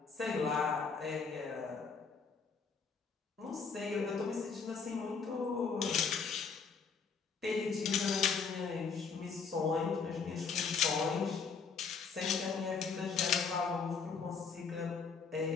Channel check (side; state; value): right; quieter; 5.4 dB